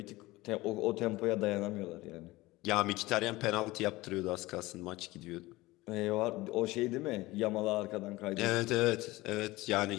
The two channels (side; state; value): right; quieter; 19.7 dB